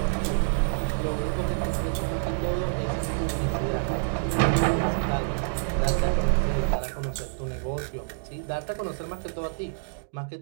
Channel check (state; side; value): silent; left; digital silence